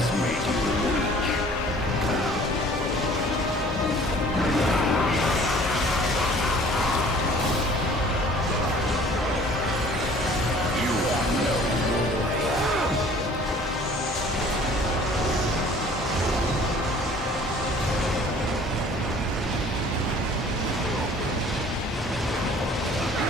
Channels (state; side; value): normal; both; correlation 0.51